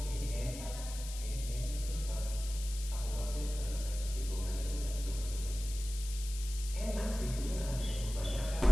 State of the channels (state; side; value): noise; left; hiss, 11 dB below the sound